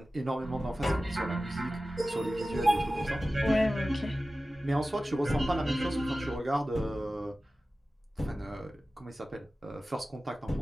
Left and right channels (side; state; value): both; normal; correlation 0.95